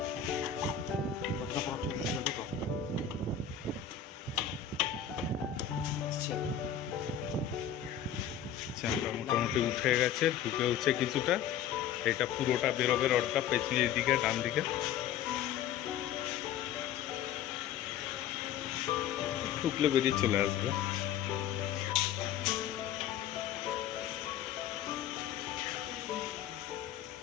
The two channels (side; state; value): right; quieter; 9.1 dB